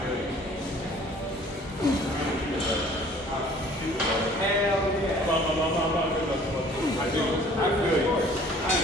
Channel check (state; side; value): normal; both; correlation 0.53